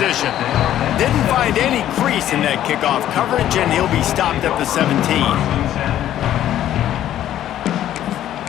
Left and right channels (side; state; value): right; quieter; 12.0 dB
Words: Didn't find any crease in that kickoff coverage, and he'll be stopped at the 17.